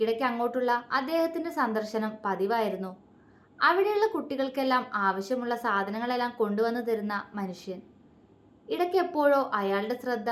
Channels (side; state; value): both; identical; correlation 1.00